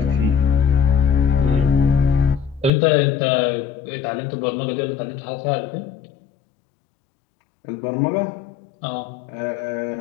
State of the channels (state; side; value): drops out; right; at 2.7 s